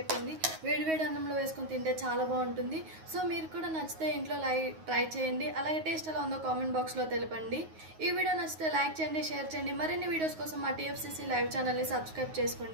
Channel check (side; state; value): left; late; 9.4 ms